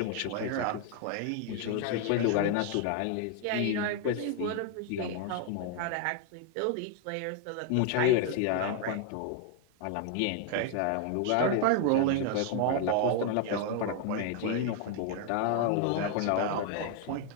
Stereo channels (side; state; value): both; different; correlation 0.00